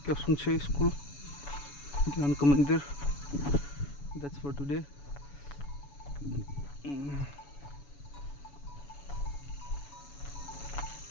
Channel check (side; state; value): right; late; 7.0 ms